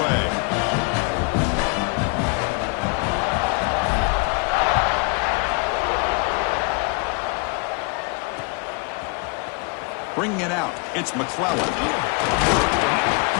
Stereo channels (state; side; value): quieter; right; 32.7 dB